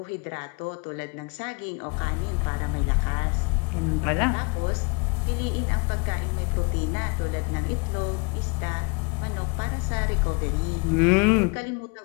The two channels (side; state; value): right; quieter; 31.4 dB